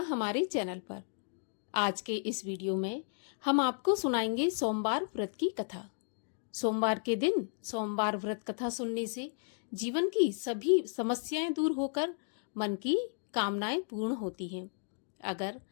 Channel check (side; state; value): right; silent; digital silence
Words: चैनल पर। आज के इस वीडियो में हम आपको सुनाएंगे सोमवार व्रत की कथा। सोमवार के दिन सोमवार व्रत कथा सुनने से जीवन की सभी समस्याएं दूर होकर मन की कामनाएं पूर्ण होती हैं। अगर